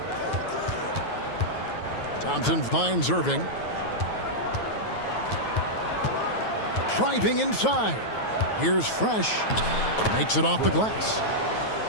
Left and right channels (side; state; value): right; late; 9.3 ms